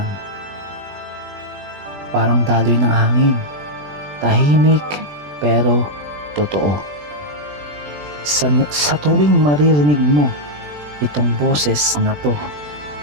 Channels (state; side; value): late; left; 20 ms